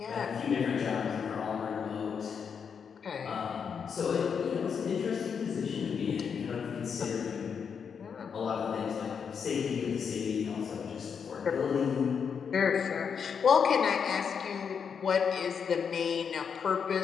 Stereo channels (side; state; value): right; quieter; 6.7 dB